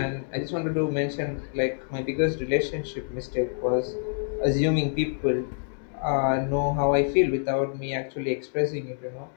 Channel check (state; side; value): silent; right; digital silence